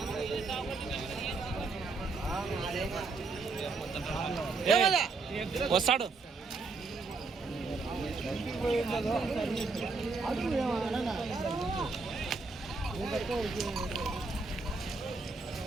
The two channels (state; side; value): quieter; left; 4.0 dB